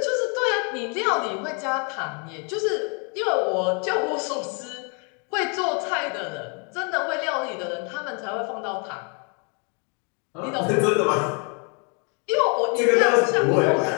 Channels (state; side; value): quieter; right; 36.3 dB